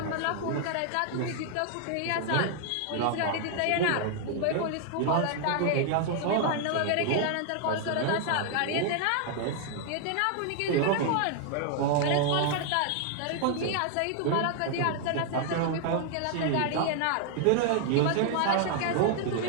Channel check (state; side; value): different; both; correlation 0.00